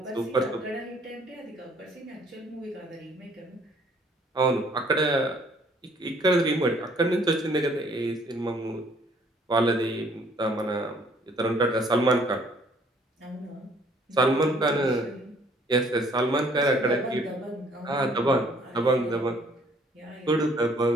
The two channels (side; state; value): both; normal; correlation 0.60